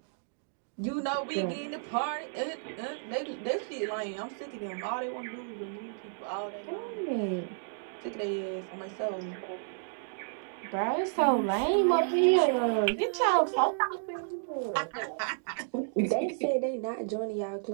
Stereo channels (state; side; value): silent; left; digital silence